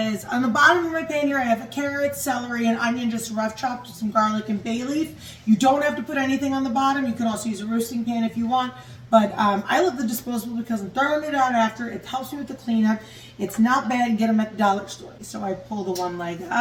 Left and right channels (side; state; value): both; identical; correlation 1.00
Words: on the bottom of my pan here I have a carrot, celery, and onion just rough chopped with some garlic and bay leaf. You don't have to put anything on the bottom. You can also use a roasting pan if you want. But I love the disposable because I'm throwing it out after. It helps me with the cleanup. It's not bad. Get them at the dollar store. So I pull the one leg